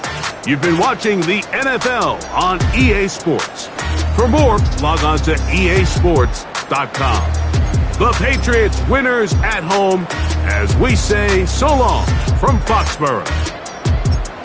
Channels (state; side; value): identical; both; correlation 1.00